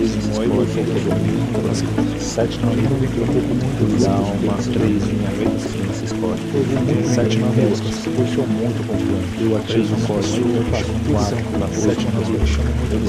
8, 7, 9, naquele alma, 3, 7, 9, eu sou muito confiante. Eu ativo o código, eu faço 4, 7, 9, eu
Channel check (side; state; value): both; identical; correlation 1.00